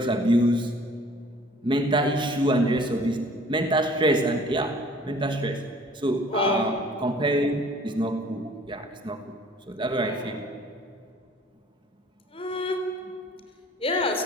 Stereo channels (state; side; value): normal; both; correlation 0.53